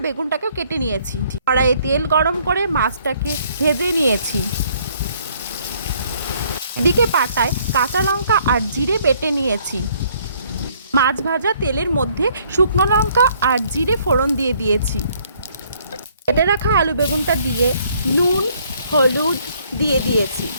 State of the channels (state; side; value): inverted; both; correlation -0.64